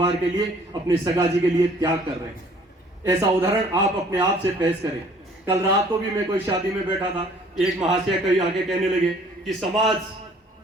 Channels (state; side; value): normal; both; correlation 0.56